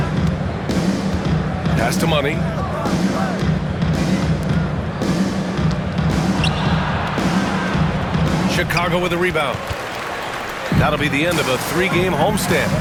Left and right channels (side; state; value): both; identical; correlation 1.00